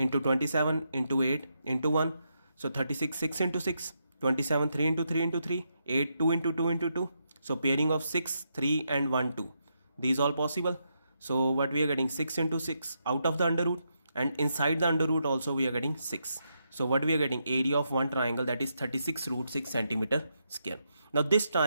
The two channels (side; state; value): both; inverted; correlation -0.81